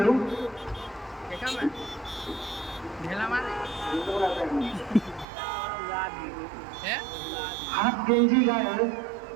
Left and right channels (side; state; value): left; drops out; at 5.2 s